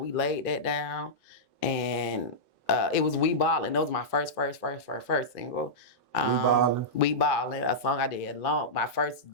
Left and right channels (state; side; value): normal; both; correlation -0.12